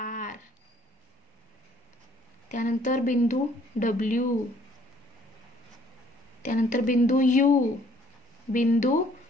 त्यानंतर बिंदू W, त्यानंतर बिंदू U, बिंदू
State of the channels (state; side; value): normal; both; correlation 0.60